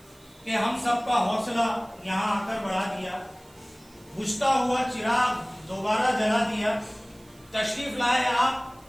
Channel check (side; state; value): right; noise; hiss, 28 dB below the sound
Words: कि हम सबका हौसला यहाँ आकर बढ़ा दिया, बुझता हुआ चिराग दोबारा जला दिया, तशरीफ लाए आप,